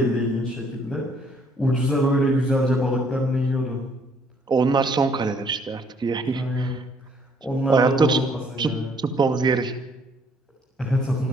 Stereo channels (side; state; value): both; normal; correlation 0.64